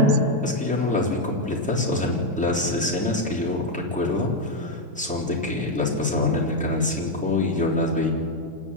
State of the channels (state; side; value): normal; both; correlation 0.03